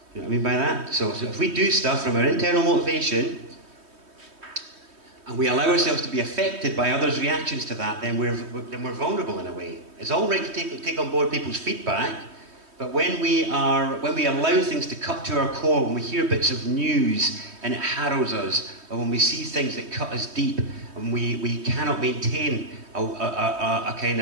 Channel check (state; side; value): late; left; 3.2 ms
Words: You know what I mean by that? So if we do stuff from our internal motivation, and we allow ourselves to be affected by others' reactions to that, then we're vulnerable in a way. It's all right to take on board people's feedback, but when we allow things to cut to our core, when we hear bits of news and it harrows us, or when we see things that cut us deep, and we cannot maintain a kind